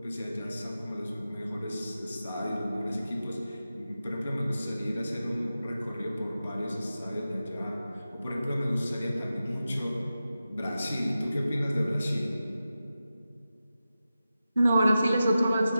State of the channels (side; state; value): both; inverted; correlation -0.93